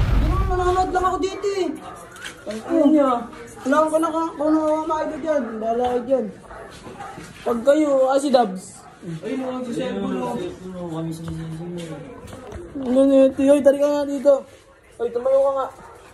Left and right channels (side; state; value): both; identical; correlation 1.00